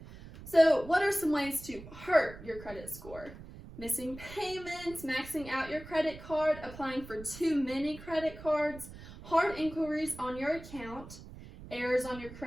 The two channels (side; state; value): right; noise; rumble, 15 dB below the sound